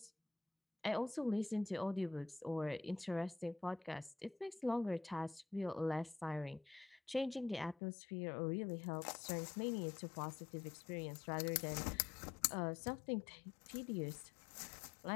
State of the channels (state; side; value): drops out; right; at 7.8 s